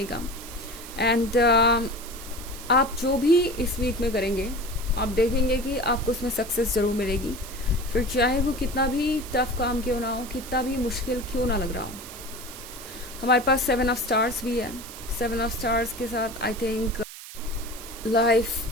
का। एंड आप जो भी इस वीक में करेंगे आप देखेंगे कि आपको उसमें सक्सेस ज़रूर मिलेगी, फिर चाहे वो कितना भी टफ काम क्यों ना हो, कितना भी मुश्किल क्यों ना लग रहा हो। हमारे पास सेवन ऑफ स्टार्स भी है। सेवन ऑफ स्टार्स के साथ आई थिंक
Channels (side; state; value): right; noise; hiss, 14 dB below the sound